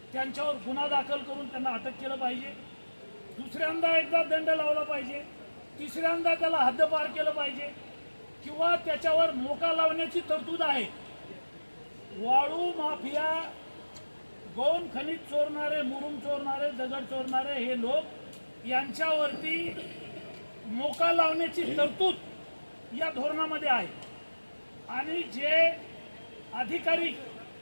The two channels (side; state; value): both; inverted; correlation -1.00